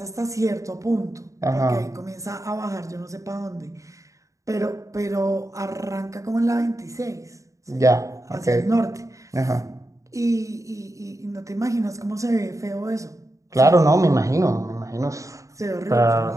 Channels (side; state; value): left; late; 0.16 ms